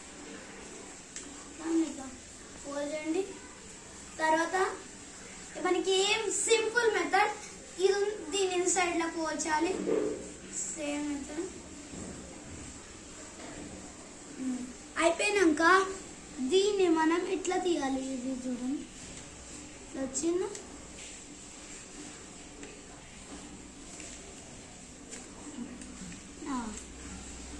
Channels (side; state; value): both; identical; correlation 1.00